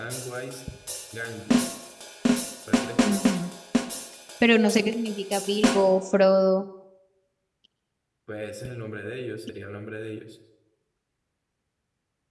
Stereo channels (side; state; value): both; identical; correlation 1.00